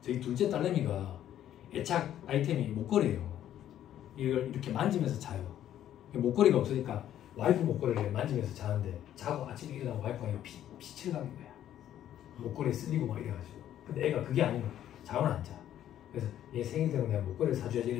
저희 둘째 딸내미가 애착 아이템이 목걸이에요. 이걸 이렇게 만지면서 자요. 목걸이가 없으니까 와이프 목걸이를 만지면서 자는데 자고 아침에 일어나면 와이프가 빛을 가는 거야. 목걸이에 쓸리고 막 이래가지고. 근데 애가 그게 아니면 잠을 안 자. 그래서 얘 생일 되면 내가 목걸이를 사줘야지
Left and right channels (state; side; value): quieter; right; 11.4 dB